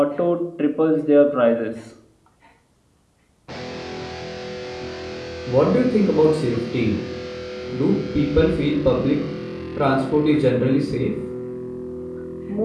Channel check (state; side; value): identical; both; correlation 1.00